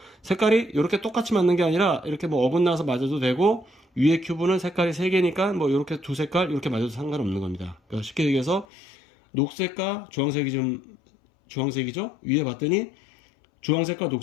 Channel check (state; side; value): drops out; right; at 8.7 s